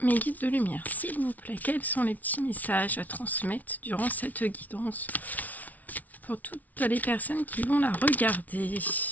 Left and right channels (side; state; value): right; late; 0.075 ms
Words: Mes guides de lumière, s'il vous plaît, quels sont les petits messages à transmettre durant cette guidance pour toutes les personnes qui vont la regarder?